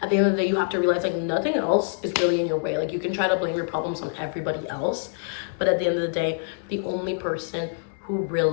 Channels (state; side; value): silent; right; 62 dB below the other